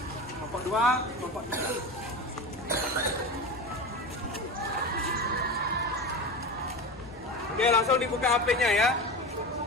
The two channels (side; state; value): both; normal; correlation 0.27